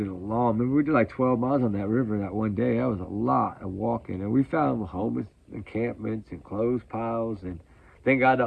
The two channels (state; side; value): identical; both; correlation 1.00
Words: a long, remember we did like 12 miles on that river that one day. That was a lot of walking, and we found homeless encampments and clothes piles, and thank God to